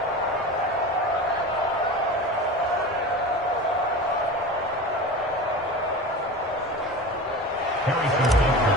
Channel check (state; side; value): normal; both; correlation 0.31